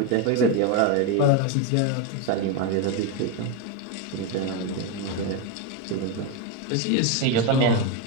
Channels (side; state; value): both; different; correlation 0.03